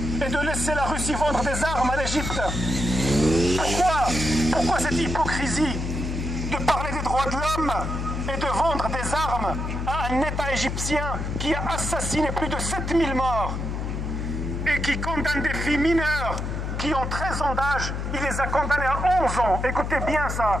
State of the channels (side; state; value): left; noise; hum, 3 dB below the sound